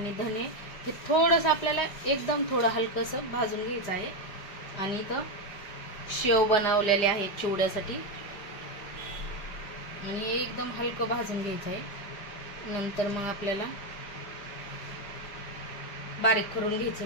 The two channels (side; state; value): right; late; 5.0 ms